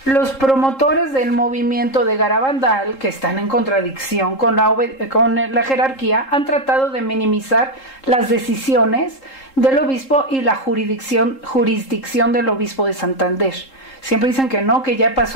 Los promotores del movimiento de Garabandal, que están en contradicción con la jerarquía, han tratado de minimizar las decisiones del obispo y la jurisdicción del obispo de Santander. Siempre dicen que no, que ya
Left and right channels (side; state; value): right; late; 3.7 ms